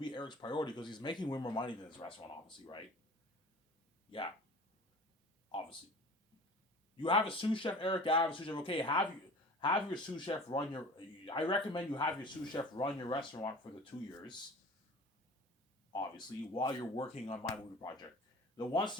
Eric's priority because he's making way more money than his restaurant, obviously, right? Yeah, obviously. You have a sous chef, Eric. I have a sous chef. Okay, have your sous chef run your. I recommend you have your sous chef run your restaurant for the 2 years. Obviously, while you're working on my movie project. Then once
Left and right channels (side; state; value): both; normal; correlation 0.41